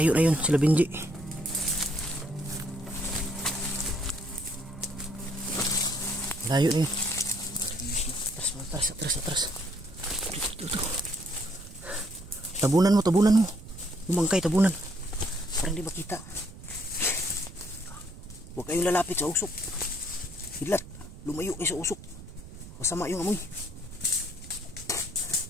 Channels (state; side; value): noise; right; rumble, 16 dB below the sound